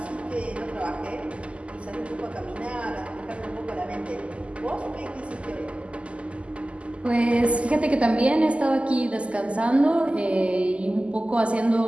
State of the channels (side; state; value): left; late; 0.057 ms